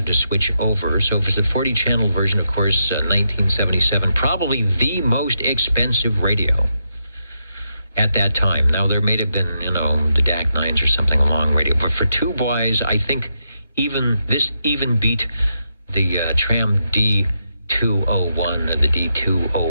to switch over. So if it's a 40 channel version, of course, 1977, probably the most expensive radio at that time. Now, there may have been, the DAC 9s or something along radio. But for tube-wise, I think this beat the Tram D201 or the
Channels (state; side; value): inverted; both; correlation -0.82